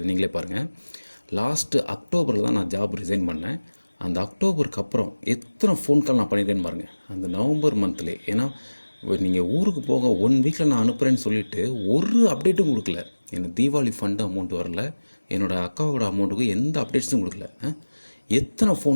நீங்களே பாருங்கள். லாஸ்ட்டு அக்டோபரில் தான் நான் ஜாப் ரிசைன் பண்ணேன். அந்த அக்டோபருக்கு அப்புறம் எத்தனை ஃபோன் கால் நான் பண்ணியிருக்கேன்னு பாருங்கள். அந்த நவம்பர் மந்த்லேயே. ஏன்னா நீங்கள் ஊருக்கு போக 1 வீக்கில் நான் அனுப்புகிறேன்னு சொல்லிவிட்டு ஒரு அப்டேட்டும் கொடுக்கல. எனக்கு தீபாவளி ஃபண்டு அமௌண்ட் வரல, என்னோடய அக்காவோட அமௌண்ட்டுக்கு எந்த அப்டேட்ஸும் கொடுக்கல. எத்தனை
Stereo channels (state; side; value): inverted; both; correlation -1.00